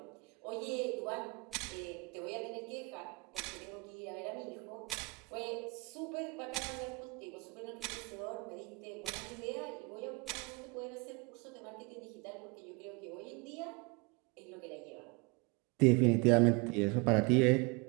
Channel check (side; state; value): left; quieter; 29.3 dB